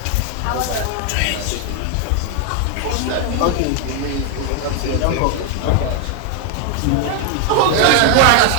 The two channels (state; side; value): different; both; correlation 0.00